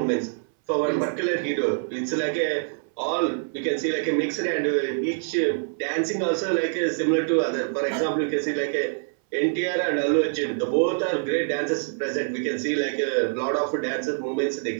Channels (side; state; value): left; silent; 60 dB below the other